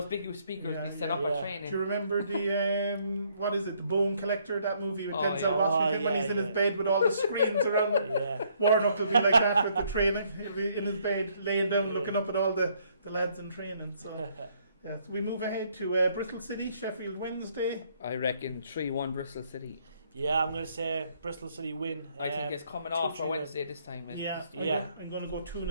big huge speakers be set up at training. Do you remember the, what is it, the Bone Collector, that movie with Denzel Washington when he's in his bed with all the screens around him? Yeah. Warnock will be like that with the training. He'll be in his bed, laying down, looking up at all the lads in training. So... Yeah, so we move ahead to Bristol City, Sheffield Wednesday. I reckon 3-1 Bristol City. Yeah, I'm going to say Bristol City win. I think it's coming off for Wednesday this time. I'm going to go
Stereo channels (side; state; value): both; inverted; correlation -0.68